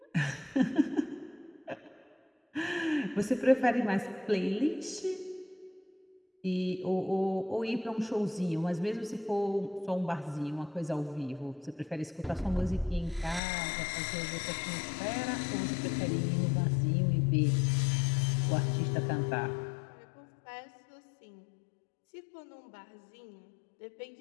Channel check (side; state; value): right; drops out; at 13.4 s